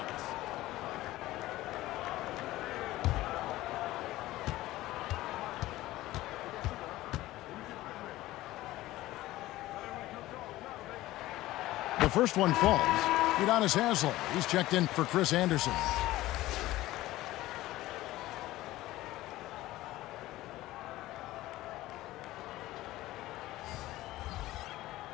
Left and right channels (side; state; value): right; quieter; 16.7 dB